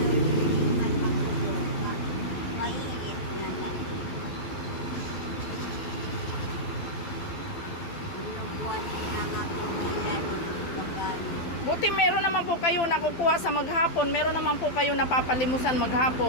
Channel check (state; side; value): late; right; 12 ms